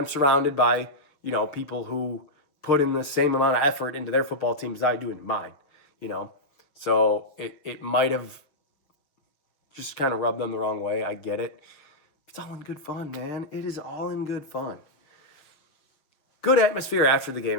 surrounded by, people who put in the same amount of effort into their football team as I do into mine, So it might have just kind of rubbed them the wrong way. I get it. It's all in good fun, man. It is all in good fun. Good atmosphere after the game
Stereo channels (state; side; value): late; right; 6.7 ms